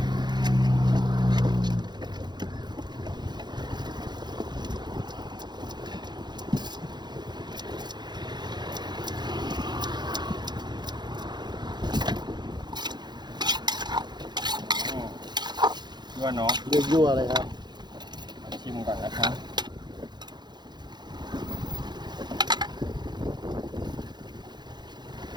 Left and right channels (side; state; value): left; late; 0.21 ms